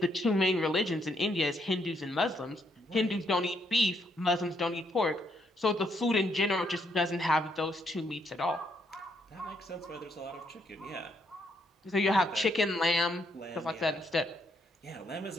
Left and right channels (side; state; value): both; normal; correlation 0.74